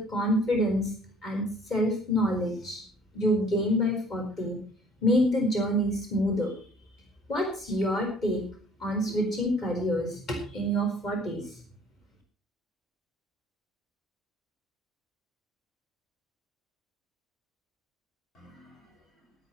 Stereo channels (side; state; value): both; normal; correlation 0.55